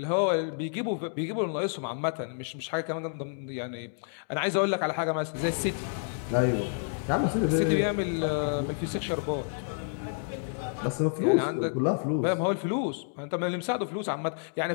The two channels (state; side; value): silent; right; digital silence